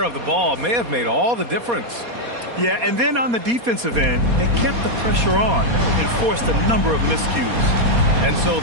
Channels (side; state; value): left; late; 4.2 ms